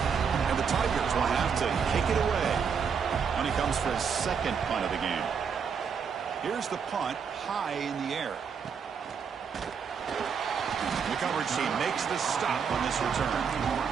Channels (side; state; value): left; quieter; 6.5 dB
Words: And the Tigers will have to kick it away when he comes for his second punt of the game. Here's the punt high in the air. The coverage team makes the stop on this return.